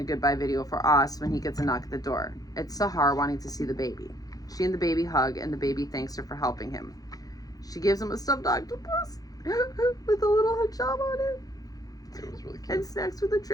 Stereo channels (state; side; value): late; right; 0.18 ms